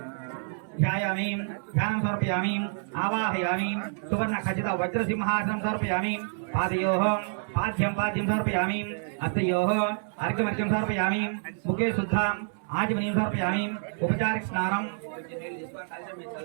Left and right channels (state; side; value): silent; left; 59 dB below the other